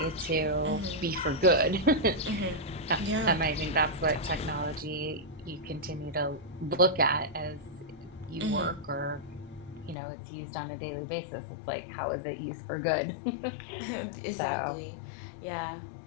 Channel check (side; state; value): right; drops out; at 10.0 s